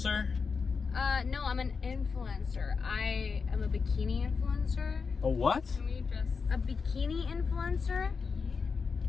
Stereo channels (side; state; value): right; quieter; 5.2 dB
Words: No, I'm an influencer. I am a bikini influencer. A what? Can we just A bikini influencer?